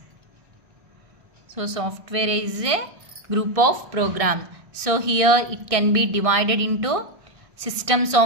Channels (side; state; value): left; late; 1.6 ms